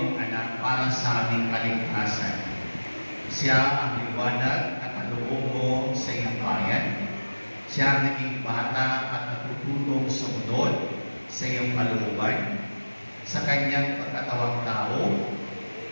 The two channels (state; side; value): inverted; both; correlation -1.00